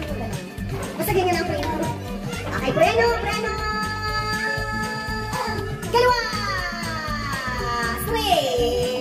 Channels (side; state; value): both; identical; correlation 1.00